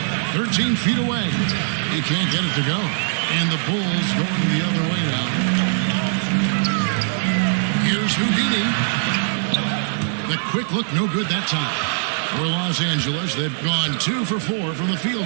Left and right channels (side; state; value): left; silent; 57 dB below the other